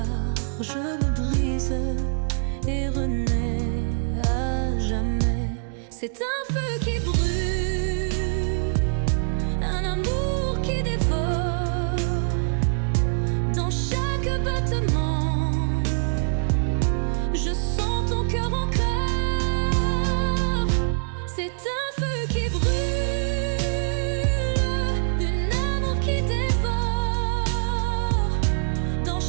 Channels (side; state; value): left; silent; digital silence